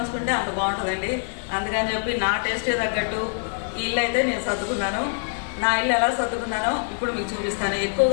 అంత బాగుంటుందండి. అందుకని చెప్పి నా టేస్టే తగ్గట్టు ఈ ఇల్లు అయితే నేను సర్దుకున్నాను. నా ఇల్లు ఎలా సర్దుకున్నానో ఇప్పుడు మీకు చూపిస్తాను.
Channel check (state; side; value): silent; right; 62 dB below the other